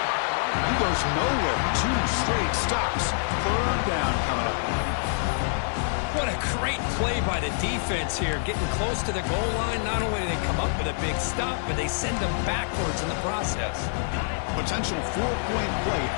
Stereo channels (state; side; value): silent; right; digital silence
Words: He goes nowhere. 2 straight stops. Third down coming up. What a great play by the defense here. Getting close to the goal line, not only do they come up with a big stop, but they send them backwards in the process. Potential 4-point play